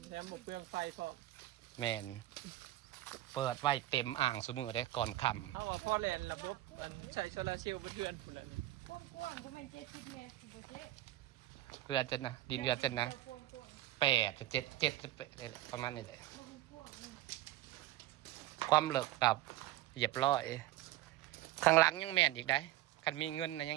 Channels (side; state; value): left; quieter; 15.3 dB